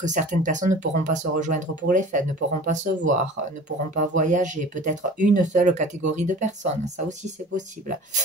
certaines personnes ne pourront pas se rejoindre pour les fêtes, ne pourront pas se voir, ne pourront pas voyager, peut-être une seule catégorie de personnes, ça aussi c'est possible.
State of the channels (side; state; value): both; normal; correlation 0.42